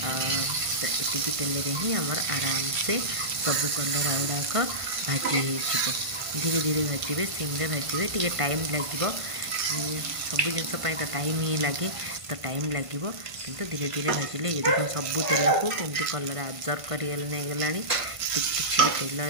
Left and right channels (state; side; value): late; left; 1.5 ms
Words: एति तेल ही आमर आराम से सबू कलर गुड़ाक भाजी हो धीरे धीरे भाजबे सिम्रे भाजबे टी टाइम लगे सब जिनस तो टाइम ही लगे तो टाइम लगे किंतु धीरे धीरे भाजिले ये देखो सबू तेल को केमती कलर आब्जर्व करगला किसी भी तेल